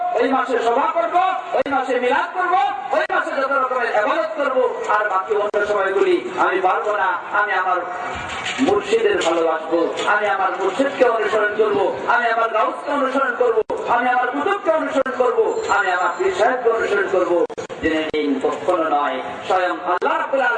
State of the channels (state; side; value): identical; both; correlation 1.00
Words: ওই মাসে সভা করব, ওই মাসে মিলাদ করব, ওই মাসে যত রকমের ইবাদত করব, আর বাকি অন্য সময়গুলি আমি পারবো না। আমি আমার মুর্শিদের ভালোবাসবো, আমি আমার মুর্শিদকে অনুসরণ করব, আমি আমার গাউসকে অনুসরণ করব, আমি আমার কুতুবকে অনুসরণ করব, আমি আমার পীর সাহেবকে অনুসরণ করব। জেনে নিন, কখনো নয়, স্বয়ং আল্লাহ রাব্বুল